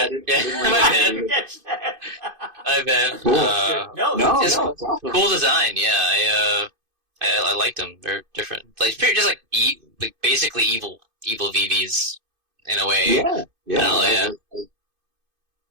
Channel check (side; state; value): left; late; 2.5 ms